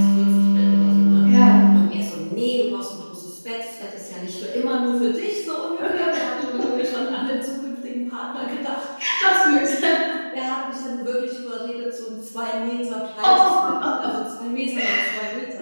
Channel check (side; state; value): both; inverted; correlation -1.00